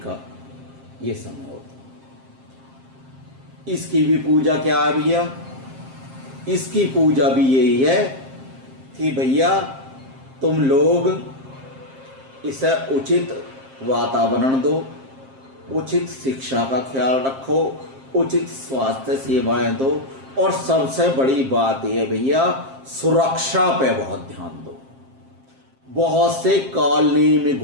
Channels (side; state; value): left; late; 7.5 ms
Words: ये समय होता है। इसकी भी पूजा क्या है भैया? इसकी पूजा भी यही है कि भैया तुम लोग इसे उचित वातावरण दो, उचित शिक्षा का ख्याल रखो, उचित स्वास्थ्य सेवाएं दो और सबसे बड़ी बात यह भैया सुरक्षा पे बहुत ध्यान दो। बहुत से कॉलोनी में